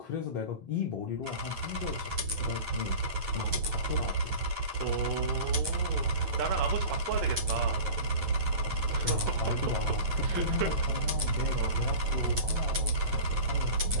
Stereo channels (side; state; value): left; late; 9.2 ms